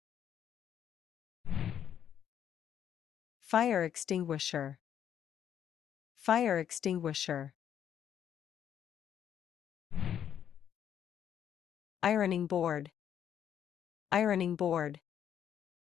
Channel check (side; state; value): right; quieter; 9.4 dB